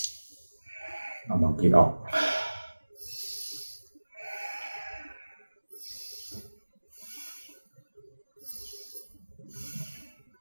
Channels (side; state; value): both; inverted; correlation -1.00